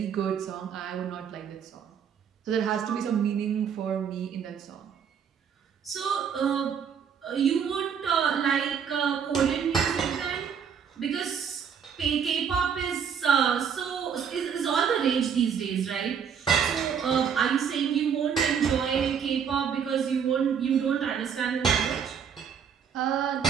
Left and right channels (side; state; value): left; quieter; 7.4 dB